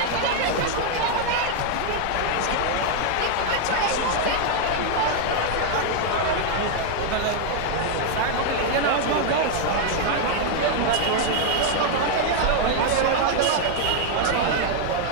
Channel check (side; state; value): both; different; correlation 0.00